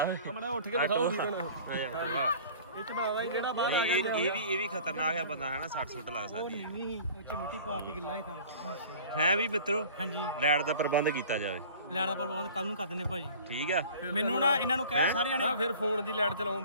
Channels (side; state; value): both; inverted; correlation -0.45